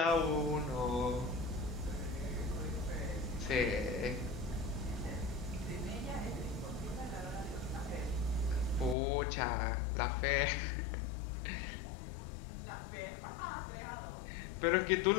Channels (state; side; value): drops out; right; at 9.0 s